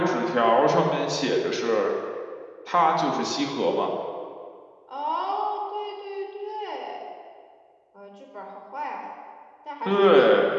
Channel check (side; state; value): both; identical; correlation 1.00